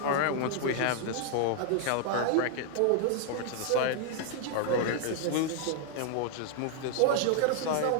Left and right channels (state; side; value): different; both; correlation 0.00